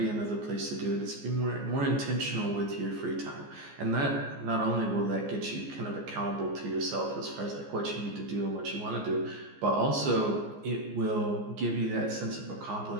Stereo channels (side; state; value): left; late; 14 ms